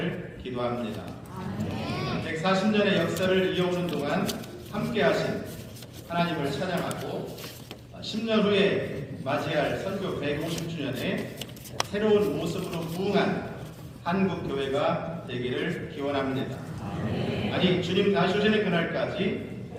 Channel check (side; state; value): both; identical; correlation 1.00